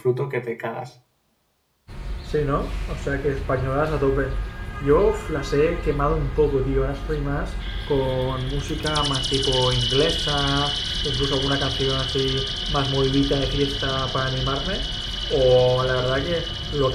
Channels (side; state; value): both; identical; correlation 1.00